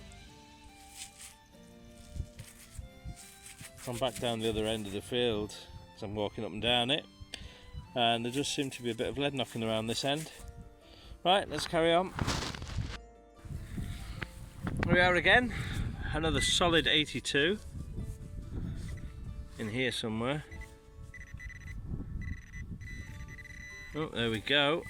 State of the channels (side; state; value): both; identical; correlation 1.00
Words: I'm back down the other end of the field as I'm walking up and down it, and there just seemed to be a bit of lead knocking around this end. Right, let's carry on. Here we are again, another solid 82 in here somewhere. Oh, there we go.